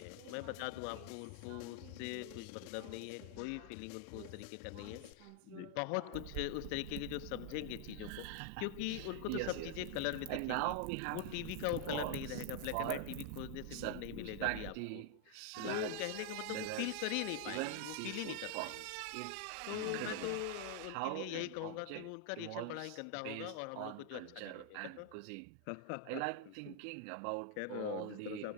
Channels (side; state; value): both; different; correlation 0.00